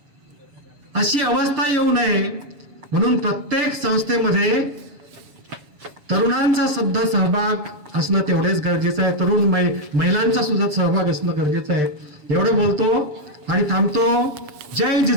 अशी अवस्था येऊ नये म्हणून प्रत्येक संस्थेमध्ये तरुणांचा सुद्धा सहभाग असणं तेवढेच गरजेचं आहे. तरुण महिलांचा सुद्धा सहभाग असणं गरजेचं आहे. एवढं बोलतो आणि थांबतो. जय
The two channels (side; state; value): left; late; 7.2 ms